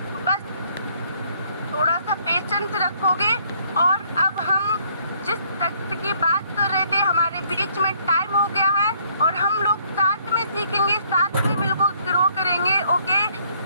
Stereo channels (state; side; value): inverted; both; correlation -0.65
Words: बस थोड़ा सा पेशेंस रखोगे। और अब हम जिस तथ्य की बात कर रहे थे, हमारे बीच में टाइम हो गया है और हम लोग साथ में सीखेंगे, साथ में बिल्कुल ग्रो करेंगे। ओके,